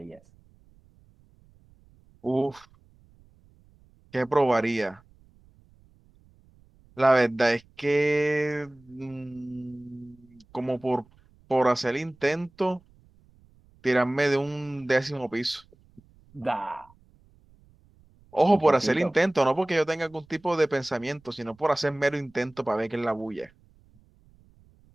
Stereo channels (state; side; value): noise; right; rumble, 29 dB below the sound